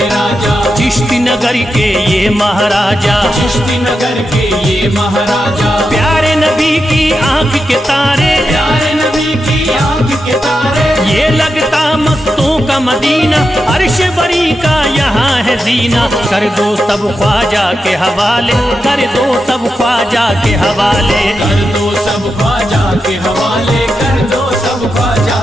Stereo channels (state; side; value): normal; both; correlation 0.88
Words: राजा, चिश्ती नगर के ये महाराजा, चिश्ती नगर के ये महाराजा, प्यारे नबी की आंख के तारे, प्यारे नबी की आंख के तारे, ये लगता मस्तों का मदीना, अर्श बरी का यहाँ है जीना। कर दो सब ख्वाजा के हवाले, कर दो सब ख्वाजा के हवाले, कर दो सब ख्वाजा के हवाले, कर दो सब ख्वाजा